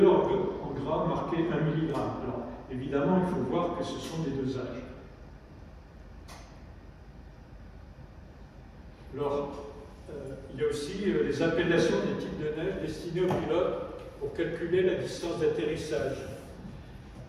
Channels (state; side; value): identical; both; correlation 1.00